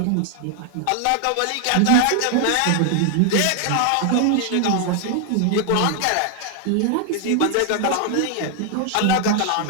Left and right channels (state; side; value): different; both; correlation 0.00